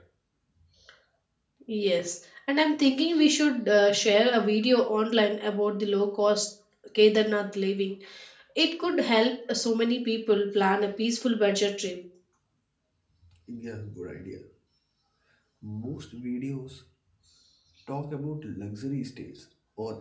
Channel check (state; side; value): identical; both; correlation 1.00